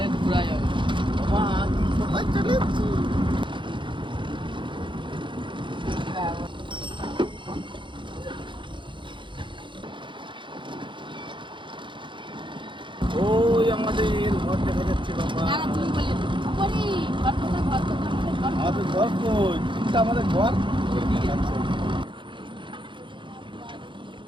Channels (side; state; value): left; late; 0.23 ms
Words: ঘোরা যাবে। বাবা কোথায় চলে এসেছি? ওই আমাদের ঘর দেখা যাচ্ছে বাবা। দাঁড়া তুমি বলে করি ঘর তো ঘর তো ঘর। আমাদের ঘর কই? এটা আমাদের ঘর।